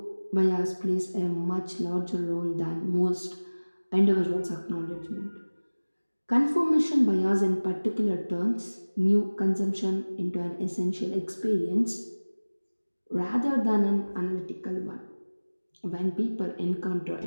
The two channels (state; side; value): inverted; both; correlation -1.00